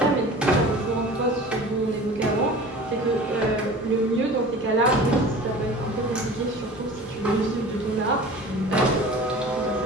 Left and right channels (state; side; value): normal; both; correlation 0.40